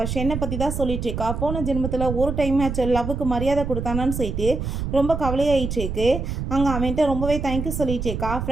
ஷென்னை பற்றி தான் சொல்லிட்டு இருக்கா. போன ஜென்மத்தில் ஒரு டைம் ஆச்சு லவ்வுக்கு மரியாதை கொடுத்தானான்னு சொல்லிட்டு ரொம்ப கவலையாயிட்டு இருக்கு. அங்கே அவன்கிட்ட ரொம்பவே தேங்க்யூ சொல்லிட்டு இருக்கா.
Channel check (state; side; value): noise; right; rumble, 4 dB below the sound